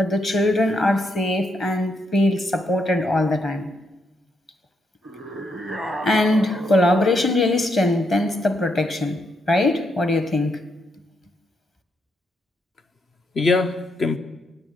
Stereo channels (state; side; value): normal; both; correlation 0.78